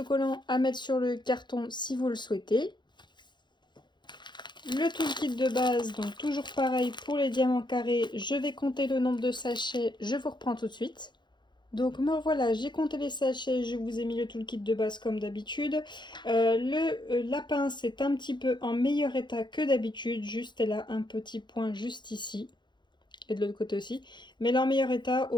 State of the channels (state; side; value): late; right; 0.22 ms